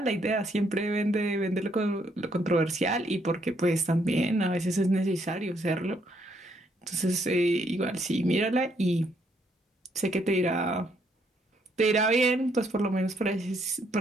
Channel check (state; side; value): normal; both; correlation 0.71